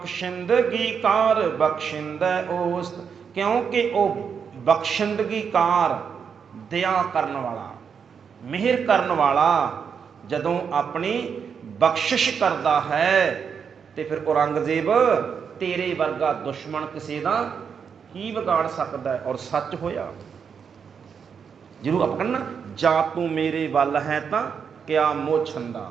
ਕਾਰ ਬਖਸ਼ਿੰਦੈ ਓਸਤ, ਕਿਉਂਕਿ ਉਹ ਬਖਸ਼ਿੰਦਗੀ ਕਾਰ, ਦਇਆ ਕਰਨ ਵਾਲਾ, ਮਿਹਰ ਕਰਨ ਵਾਲਾ ਜਦੋਂ ਆਪਣੀ ਬਖਸ਼ਿਸ਼ ਕਰਦਾ ਹੈ, ਤੇ ਫਿਰ ਔਰੰਗਜ਼ੇਬ ਤੇਰੇ ਵਰਗਾ ਦੁਸ਼ਮਣ ਕਿਸੇ ਦਾ ਕੀ ਵਿਗਾੜ ਸਕਦਾ ਹੈ? ਔਰ ਸੱਚ ਹੋਇਆ। ਜਿਹਨੂੰ ਆਪਾਂ ਕਹਿੰਦੇ ਨਾ, ਜਾਂ ਤੂੰ ਮੇਰੇ ਵੱਲ ਹੈ ਤਾਂ ਕਿਆ ਮੋਹ ਛੰਦਾ,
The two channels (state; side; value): quieter; left; 6.7 dB